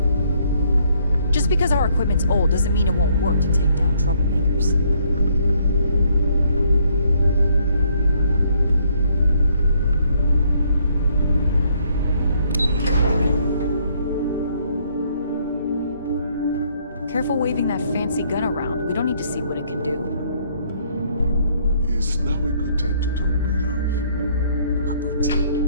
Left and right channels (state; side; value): inverted; both; correlation -0.68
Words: Just because our equipment's old doesn't mean it won't work to take down troublemakers. Careful waving that fancy gun around. We don't need to see what it can do. Is now a good time to talk, my love?